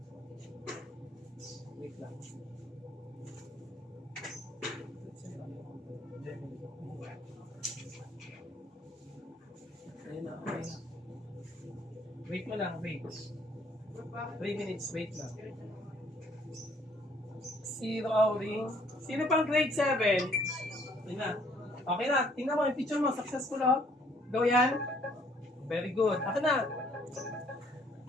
Wait lang. Ayun na, okay na. Wait mo lang, wait. 3 minutes, wait lang. Zero outing. Sino pang grade 7? Ayun na. Okay na, tingnan mo yung picture mo, successful oh. Go yan. Very good. Ako na.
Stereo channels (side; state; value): both; normal; correlation 0.63